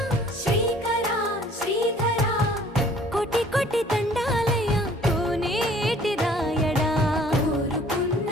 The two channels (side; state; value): both; normal; correlation 0.55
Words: శ్రీకరా శ్రీధరా కోటి కోటి దండాలయ్యా కోనేటి రాయడా కోరుకున్న